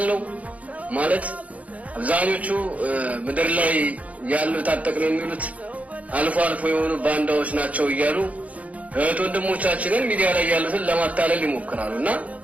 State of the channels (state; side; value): late; left; 0.068 ms